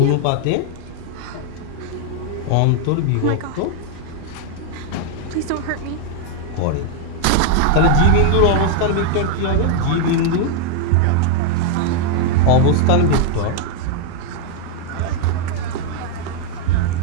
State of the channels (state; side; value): different; both; correlation 0.00